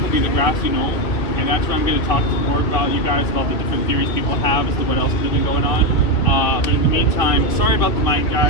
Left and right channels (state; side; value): late; right; 2.6 ms